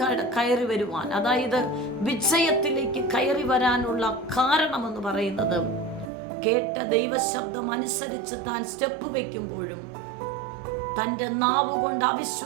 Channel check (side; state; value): left; drops out; at 6.1 s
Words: കയറി വരുവാൻ, അതായത് വിജയത്തിലേക്ക് കയറി വരാനുള്ള കാരണമെന്ന് പറയുന്നത് കേട്ട ദൈവശബ്ദം അനുസരിച്ച് താൻ സ്റ്റെപ്പ് വയ്ക്കുമ്പോഴും തൻ്റെ നാവുകൊണ്ട്